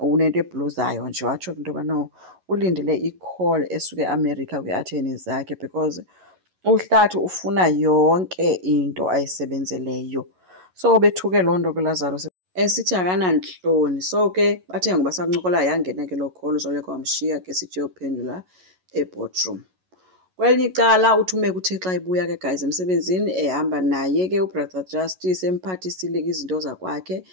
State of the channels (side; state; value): left; late; 11 ms